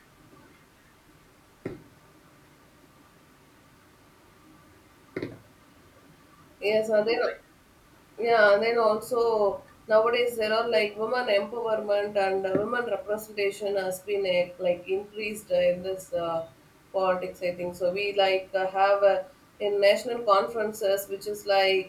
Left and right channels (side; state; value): both; identical; correlation 1.00